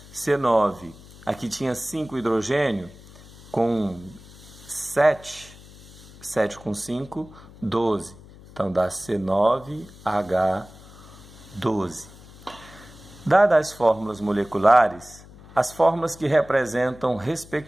C9, aqui tinha 5 hidrogênio, com 7. 7 com 5, 12. Então, dá C9H12. Dadas as fórmulas moleculares, as fórmulas que representam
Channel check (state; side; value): noise; left; hum, 20 dB below the sound